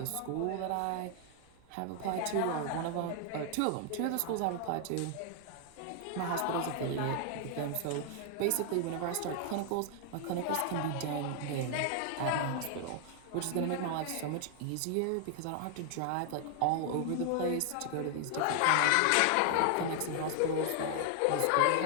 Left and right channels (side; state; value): both; different; correlation 0.00